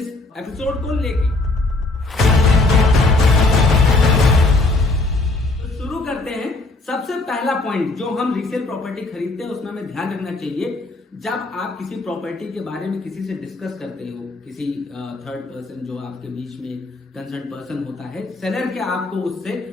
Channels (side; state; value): right; quieter; 3.1 dB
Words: एपिसोड को लेके। तो शुरू करते हैं। सबसे पहला पॉइंट जो हम रीसेल प्रॉपर्टी खरीदते हैं उसमें हमें ध्यान रखना चाहिए, जब आप किसी प्रॉपर्टी के बारे में किसी से डिस्कस करते हो, किसी थर्ड पर्सन जो आपके बीच में कंसर्न पर्सन होता है, सेलर के आपको उससे